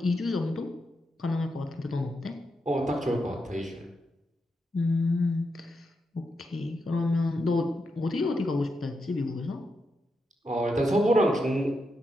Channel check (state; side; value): normal; both; correlation 0.85